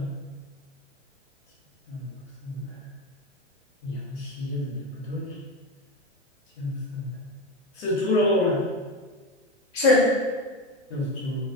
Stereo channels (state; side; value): normal; both; correlation 0.20